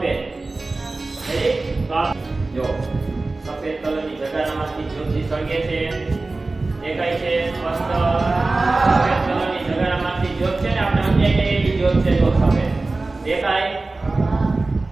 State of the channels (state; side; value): quieter; left; 3.3 dB